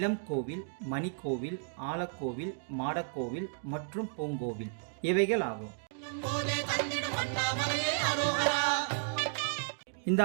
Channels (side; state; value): left; silent; digital silence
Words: கோவில், மணிக்கோவில், ஆலக்கோவில், மாடக்கோவில் மற்றும் பூங்கோவில் இவைகள் ஆகும். இந்த